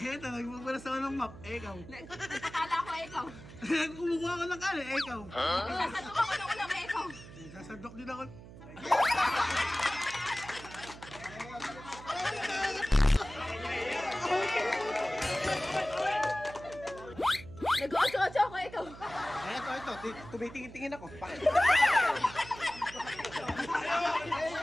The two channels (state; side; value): noise; right; hum, 16 dB below the sound